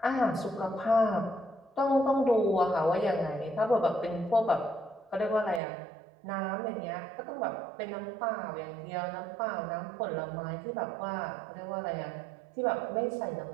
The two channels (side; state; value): left; drops out; at 5.6 s